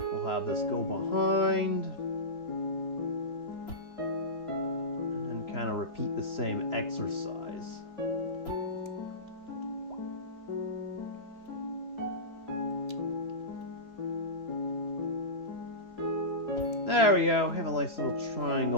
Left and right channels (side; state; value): right; late; 3.0 ms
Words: We'll have this go behind. And then kind of repeat the same exercise. There we go. Have a nice little